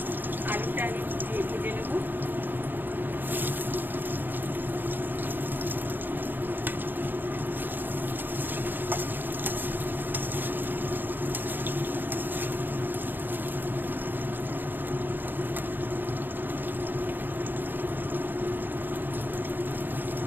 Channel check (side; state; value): left; late; 0.092 ms